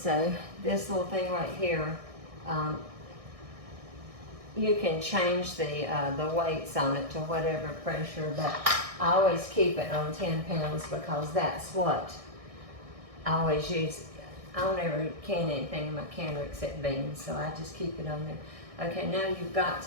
this little thing right here, you can change the weights on it to whatever pressure, but I always keep it on 10 pounds because that's what I always use. I don't ever can anything in my canner except beans, so I just keep it on there. Okay, now you've got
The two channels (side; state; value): left; late; 1.6 ms